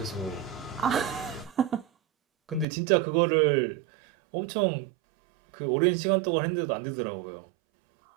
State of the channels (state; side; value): drops out; left; at 2.7 s